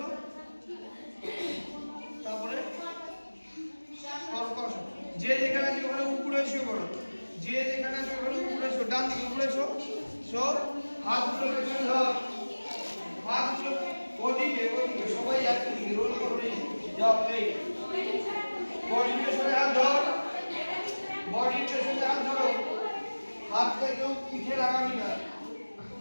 তারপরে যে যেখানে আছে ওখানে উপরে শুয়ে পড়ো যে যেখানে আছে ওখানে উপরে শো ডান দিকে উপরে শো হাতগুলো পেছনে ধর হাতগুলো ওদিকে সবাই একদিকে রোল করে যাও এই বডির পেছনে হাত ধর বডির পেছনে হাত ধরো হাতটা কেউ পিঠে লাগাবি না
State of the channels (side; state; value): both; inverted; correlation -1.00